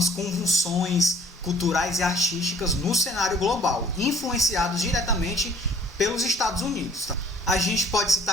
convulsões culturais e artísticas no cenário global, influenciados diretamente pelos Estados Unidos, tá? A gente pode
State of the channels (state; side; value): normal; both; correlation 0.55